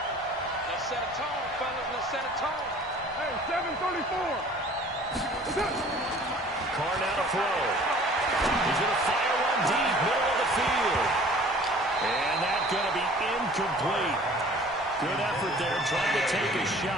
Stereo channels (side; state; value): both; normal; correlation 0.49